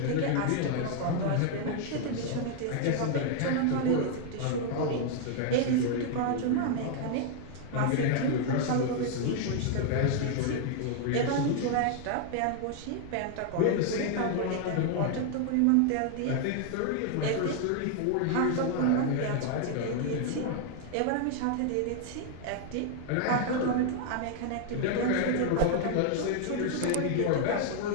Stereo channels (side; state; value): both; different; correlation 0.00